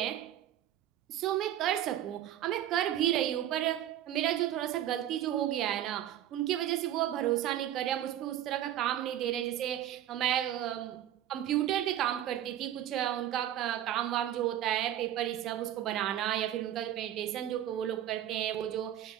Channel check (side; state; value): left; quieter; 11.8 dB